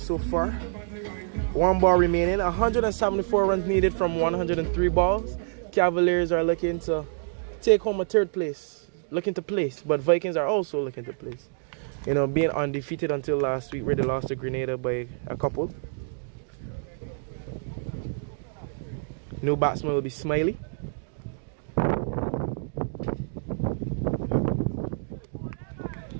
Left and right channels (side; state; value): left; silent; digital silence